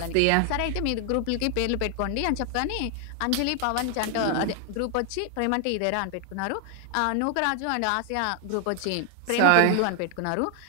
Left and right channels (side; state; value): both; different; correlation 0.00